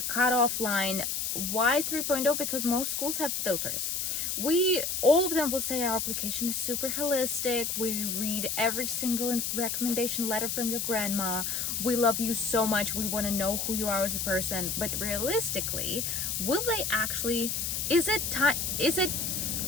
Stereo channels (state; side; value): noise; left; hiss, 1 dB below the sound